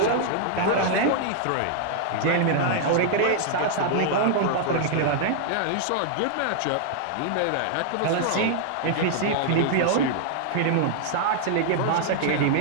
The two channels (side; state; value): both; different; correlation -0.01